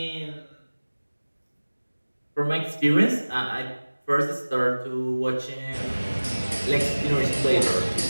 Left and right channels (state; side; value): inverted; both; correlation -1.00